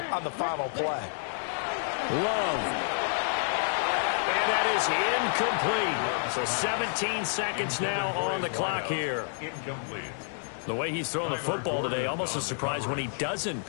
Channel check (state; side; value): silent; right; digital silence